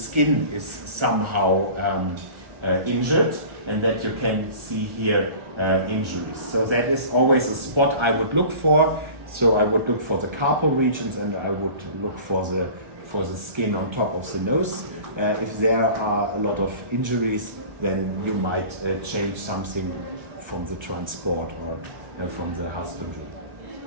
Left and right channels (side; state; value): left; late; 1.4 ms